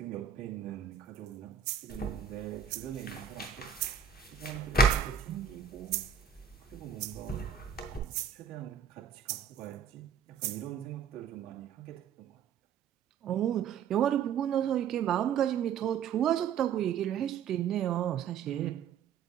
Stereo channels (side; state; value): left; quieter; 7.6 dB